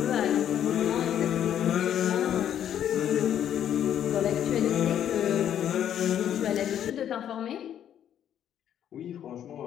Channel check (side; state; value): right; quieter; 10.0 dB